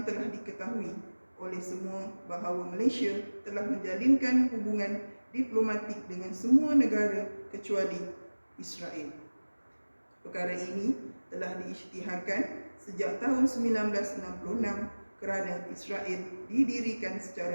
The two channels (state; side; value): inverted; both; correlation -1.00